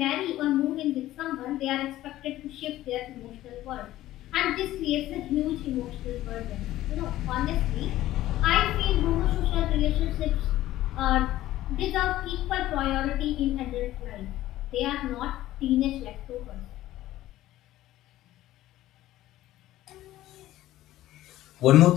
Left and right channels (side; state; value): right; quieter; 14.8 dB